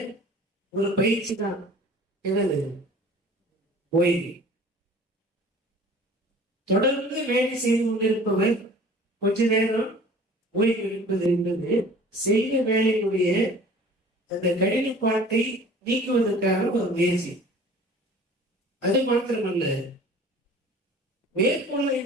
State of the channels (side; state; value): both; normal; correlation 0.46